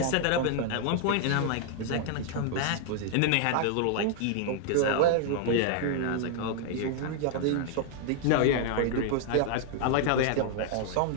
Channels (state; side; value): different; both; correlation -0.01